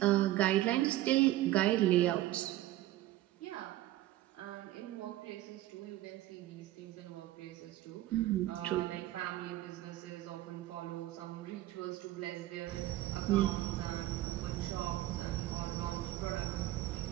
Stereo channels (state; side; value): quieter; left; 15.4 dB